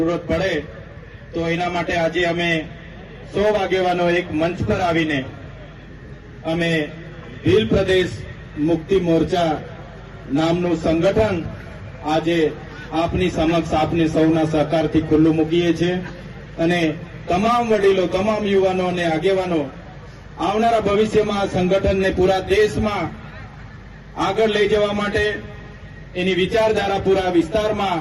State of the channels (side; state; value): both; identical; correlation 1.00